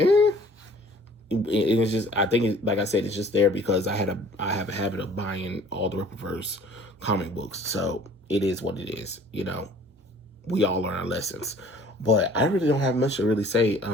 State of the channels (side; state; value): both; normal; correlation 0.52